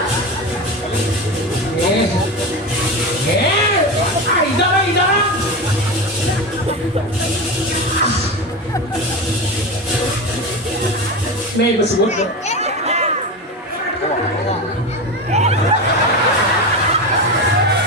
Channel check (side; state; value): both; normal; correlation 0.22